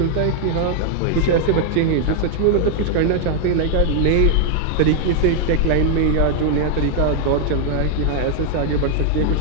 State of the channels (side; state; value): both; different; correlation 0.00